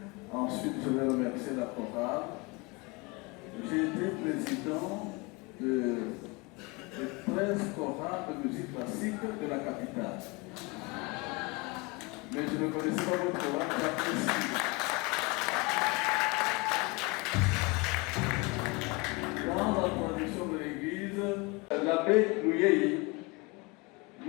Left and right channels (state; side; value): quieter; right; 26.5 dB